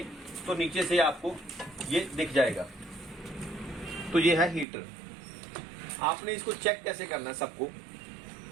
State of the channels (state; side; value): drops out; left; at 4.7 s